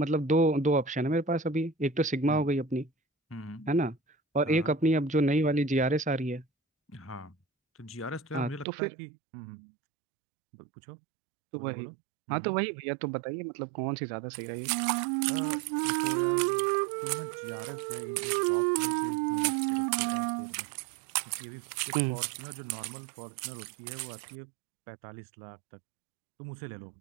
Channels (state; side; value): drops out; left; at 8.7 s